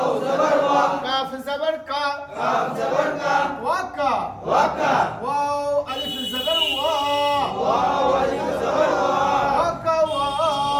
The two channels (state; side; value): identical; both; correlation 1.00